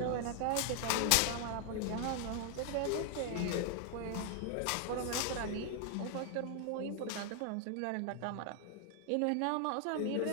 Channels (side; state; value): both; different; correlation 0.00